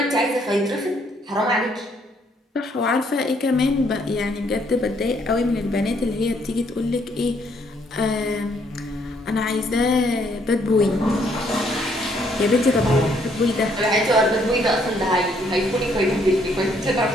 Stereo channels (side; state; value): both; normal; correlation 0.68